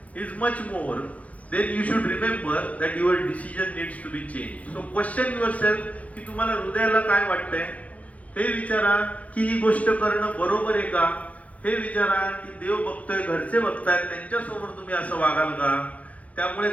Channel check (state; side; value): late; right; 0.068 ms